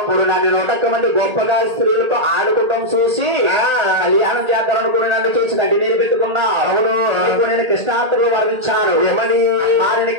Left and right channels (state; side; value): late; left; 1.8 ms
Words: నన్ను 100 మంది గొప్పగా స్త్రీలతో ఆడుకోవడం చూసి కళ్యాణం చేద్దాం అనుకుని నన్ను చూసి గడ్డి నీరు పెట్టుకున్నావు. అవును. నేను కృష్ణాత్రులు వర్ణించాను. ఏమని